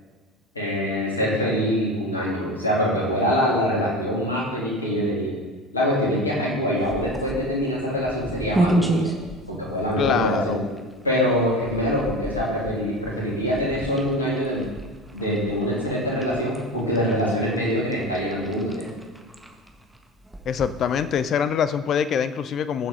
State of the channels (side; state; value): both; normal; correlation 0.31